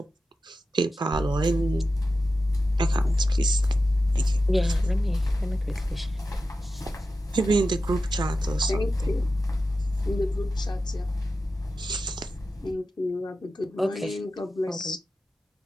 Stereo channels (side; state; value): both; normal; correlation 0.91